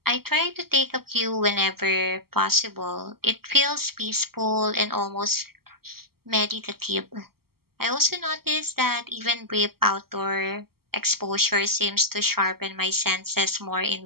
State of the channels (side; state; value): left; late; 0.94 ms